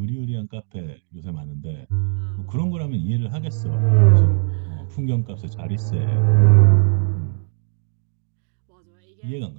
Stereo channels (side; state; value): left; silent; 65 dB below the other